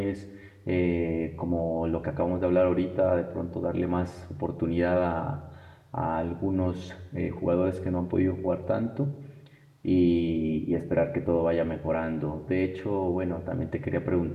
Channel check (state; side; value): identical; both; correlation 1.00